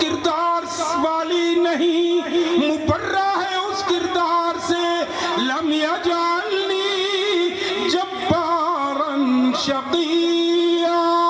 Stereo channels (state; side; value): identical; both; correlation 1.00